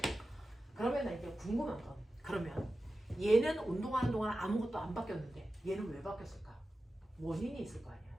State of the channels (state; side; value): normal; both; correlation 0.93